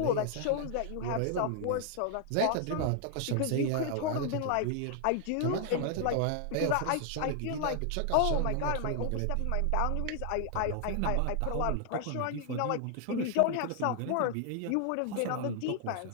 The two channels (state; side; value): different; both; correlation 0.00